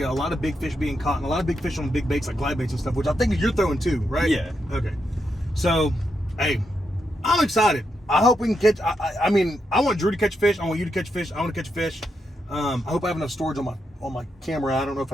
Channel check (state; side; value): normal; both; correlation 0.83